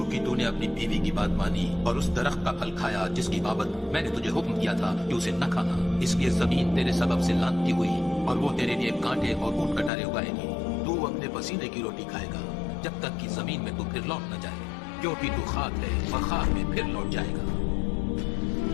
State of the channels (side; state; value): right; drops out; at 9.9 s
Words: अपनी बीवी की बात मानी और उस दरख्त का फल खाया जिसकी बाबत मैंने तुझे हुक्म किया था कि उसे न खाना, इसलिए जमीन तेरे सबब से लानती हुई और वो तेरे लिए कांटे और ऊंट कटारे उगाएगी। तू अपने पसीने की रोटी खाएगा जब तक कि जमीन में तू फिर लौट न जाए, क्योंकि तू खाक है और खाक में फिर लौट जाएगा।